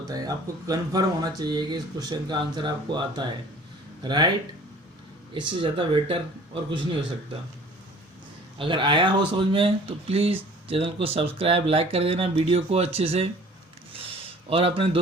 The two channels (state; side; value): normal; both; correlation 0.49